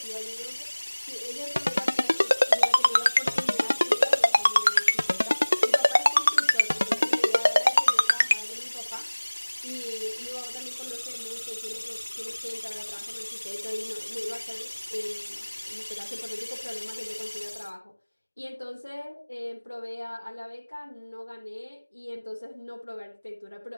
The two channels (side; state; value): both; inverted; correlation -1.00